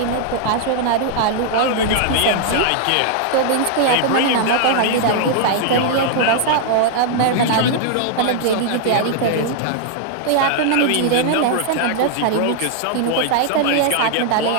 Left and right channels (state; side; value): different; both; correlation -0.01